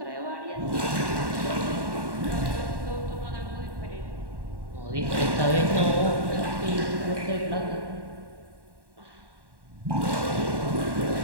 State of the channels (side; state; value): left; late; 1.1 ms